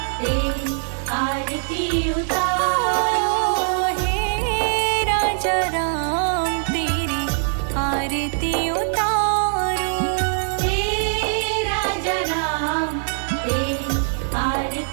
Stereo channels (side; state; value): left; silent; digital silence